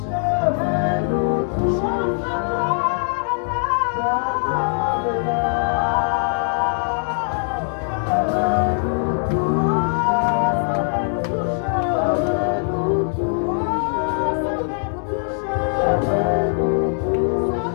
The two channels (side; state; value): right; silent; digital silence